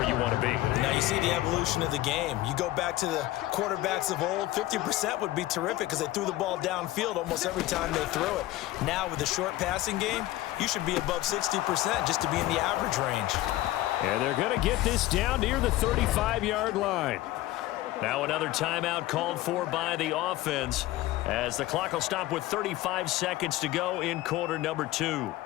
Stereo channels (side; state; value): right; quieter; 16.4 dB